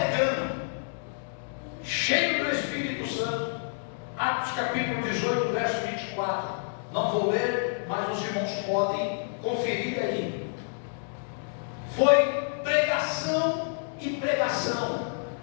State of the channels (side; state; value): right; silent; digital silence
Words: cheio do Espírito Santo. Atos capítulo 18, verso 24. Não vou ler, mas os irmãos podem conferir aí. Foi pregação e pregação